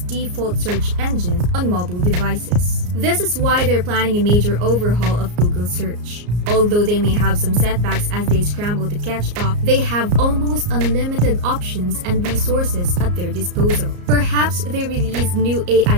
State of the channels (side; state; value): left; late; 34 ms